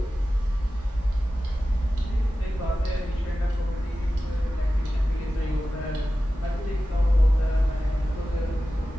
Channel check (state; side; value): normal; both; correlation 0.94